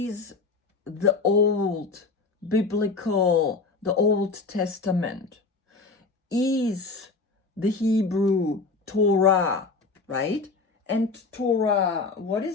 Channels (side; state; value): right; quieter; 4.1 dB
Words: the old biblical, the Old Testament, is the Hebrew Torah, right? And Torah, what